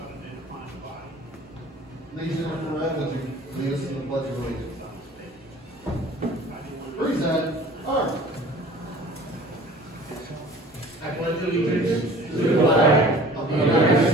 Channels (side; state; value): both; normal; correlation 0.46